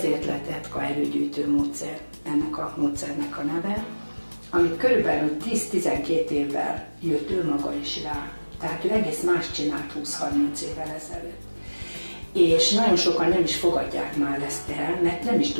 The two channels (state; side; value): inverted; both; correlation -1.00